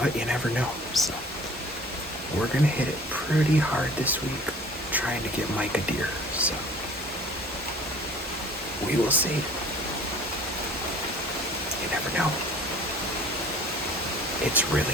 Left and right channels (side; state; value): both; normal; correlation 0.48